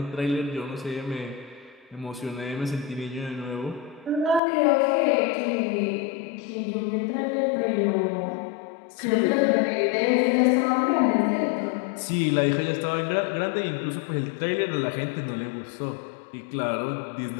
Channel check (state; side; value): drops out; right; at 4.4 s